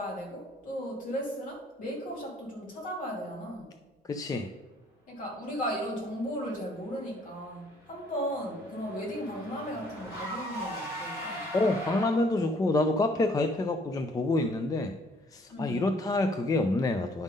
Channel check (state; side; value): normal; both; correlation 0.62